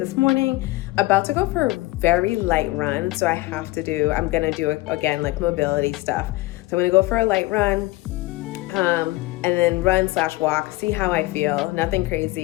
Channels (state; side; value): quieter; right; 20.2 dB